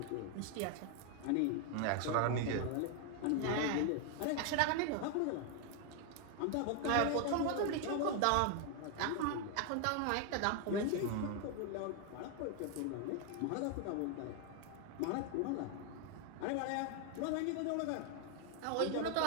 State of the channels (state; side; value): different; both; correlation 0.00